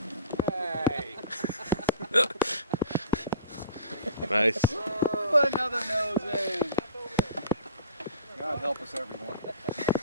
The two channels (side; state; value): both; inverted; correlation -0.42